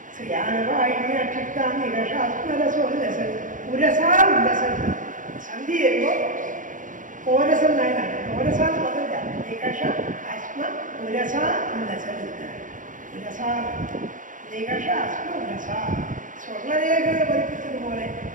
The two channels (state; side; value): late; left; 0.38 ms